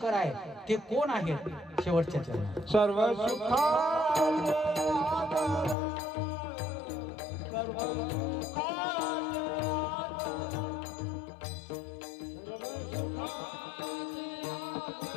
आहे ते कोण आहेत? शेवटच्या चरणात सर्व सुखा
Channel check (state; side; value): drops out; right; at 5.8 s